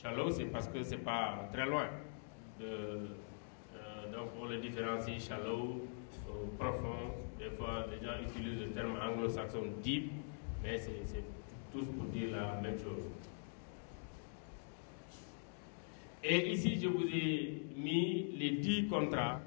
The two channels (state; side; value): silent; right; digital silence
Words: c'est parce que c'est pas très loin. Donc on le différencie shallow, profond. Des fois, les gens utilisent le terme anglo-saxon deep, mais c'est tous pour dire la même chose. Et ici, je vous ai mis les 10 contrats